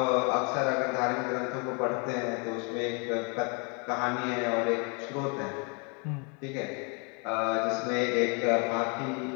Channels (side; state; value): right; quieter; 34.6 dB